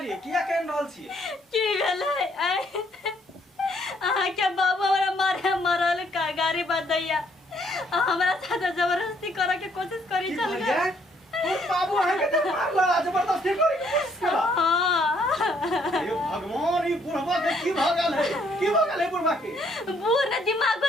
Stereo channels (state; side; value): normal; both; correlation 0.68